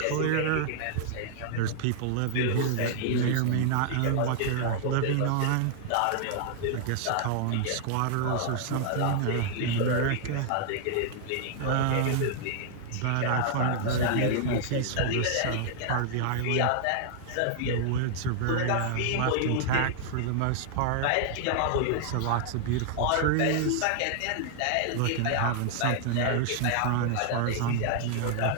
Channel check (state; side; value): different; both; correlation -0.01